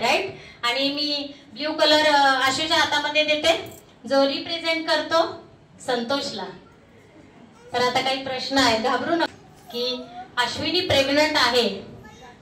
आणि मी ब्ल्यू कलर आशूच्या हातामध्ये देते. जो रिप्रेझेंट करतो संतोषला. तर आता काही प्रश्न आहे, घाबरू नका. की अश्विनी प्रेग्नंट आहे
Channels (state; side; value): identical; both; correlation 1.00